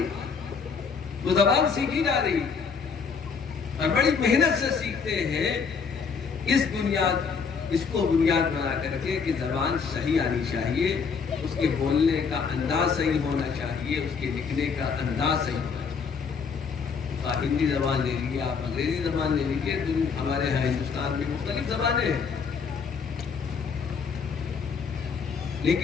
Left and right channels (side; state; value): right; quieter; 5.7 dB